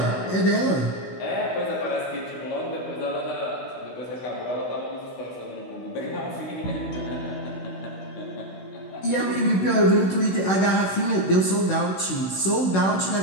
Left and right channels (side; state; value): right; late; 16 ms